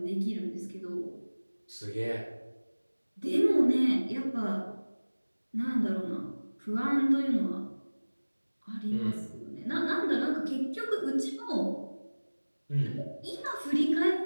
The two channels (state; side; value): inverted; both; correlation -1.00